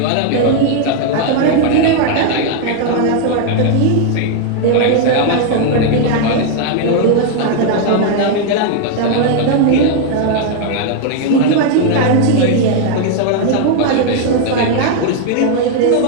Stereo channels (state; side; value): different; both; correlation 0.00